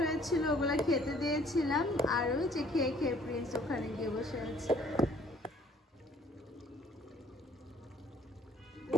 হয়েছিল ওগুলা খেতে দিয়েছিলাম, আর ওই যে খেয়ে খেয়ে প্রিন্স ওখানে গিয়ে বসে আছে।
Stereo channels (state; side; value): normal; both; correlation 0.59